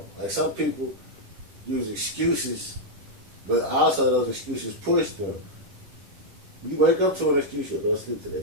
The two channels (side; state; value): left; late; 10 ms